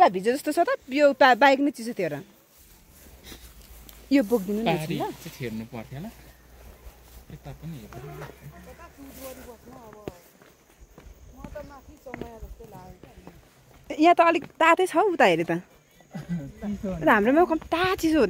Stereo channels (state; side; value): identical; both; correlation 1.00